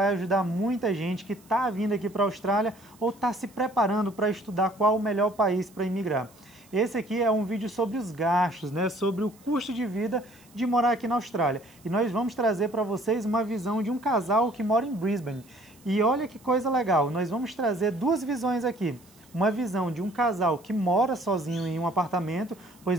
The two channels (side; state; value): right; noise; hiss, 28 dB below the sound